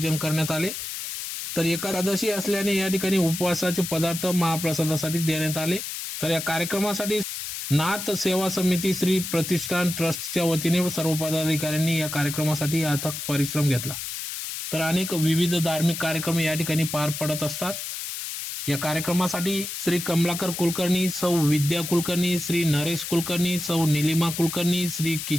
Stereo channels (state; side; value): noise; left; hiss, 6 dB below the sound